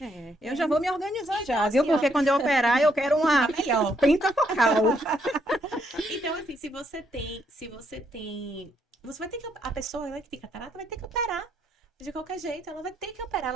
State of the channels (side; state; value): both; normal; correlation 0.74